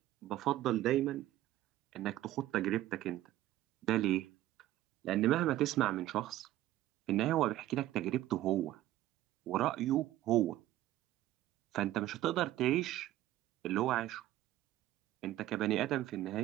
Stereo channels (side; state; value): left; quieter; 14.6 dB